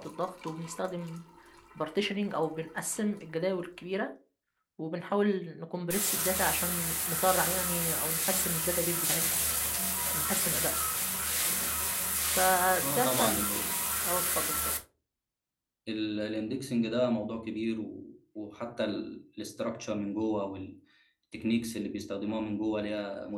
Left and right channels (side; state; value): both; identical; correlation 1.00